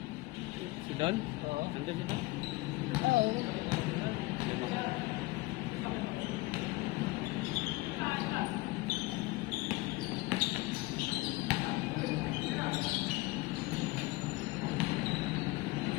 Si Don? Oo. Nandun si Don? Ay, oo.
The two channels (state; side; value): quieter; right; 21.1 dB